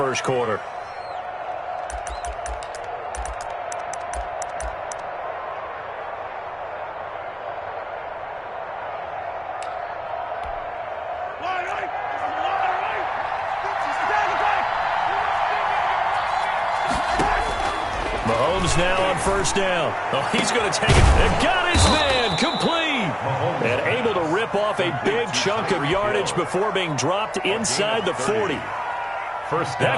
quarter. Mahomes now on 1st down. Oh, he's going to take it. And got his man complete. And able to rip off a big chunk of yardage before being dropped inside the 40.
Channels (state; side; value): identical; both; correlation 1.00